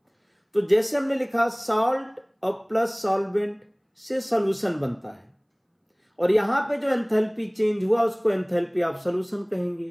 तो जैसे हमने लिखा सॉल्ट और प्लस सॉल्वेंट से सॉल्यूशन बनता है, और यहां पे जो एंथैल्पी चेंज हुआ उसको एंथैल्पी ऑफ सॉल्यूशन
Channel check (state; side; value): identical; both; correlation 1.00